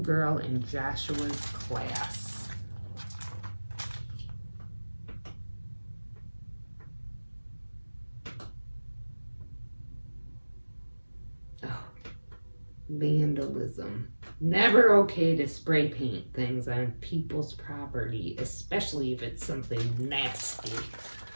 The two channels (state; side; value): inverted; both; correlation -1.00